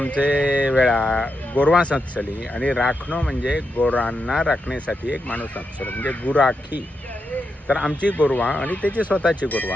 वेळा गोरवां सचली आणि राखणं म्हणजे गोरांना राखण्यासाठी एक माणूस असलो म्हणजे गुराखी. तर आमची गोरवा आणि त्याची स्वतःची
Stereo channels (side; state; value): both; normal; correlation 0.85